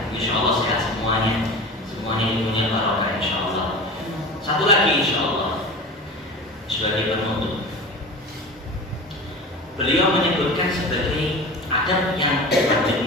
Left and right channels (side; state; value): both; normal; correlation 0.33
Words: insya Allah sehat semuanya. Semuanya ilmunya barokah insya Allah. Satu lagi insya Allah sebagai penutup, beliau menyebutkan sebagai adab yang